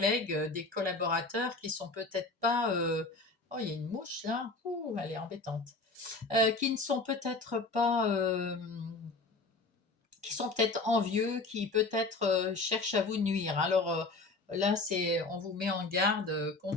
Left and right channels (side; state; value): right; quieter; 3.4 dB